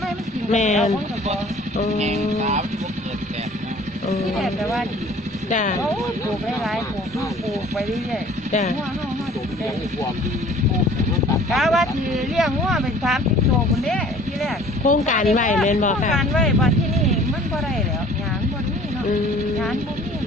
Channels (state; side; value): normal; both; correlation 0.50